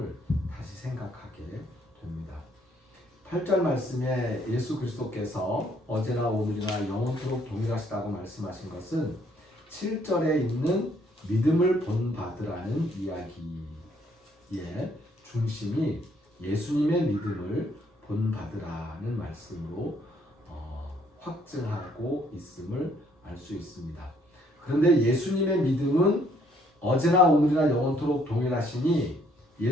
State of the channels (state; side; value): normal; both; correlation 0.66